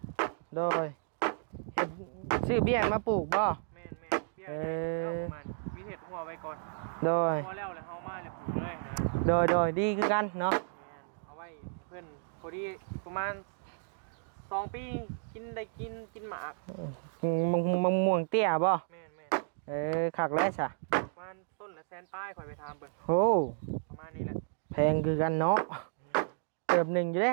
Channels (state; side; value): silent; left; digital silence